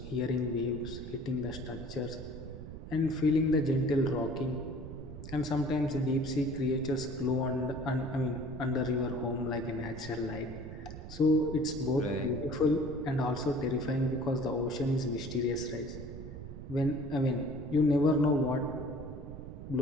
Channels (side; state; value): right; noise; rumble, 11 dB below the sound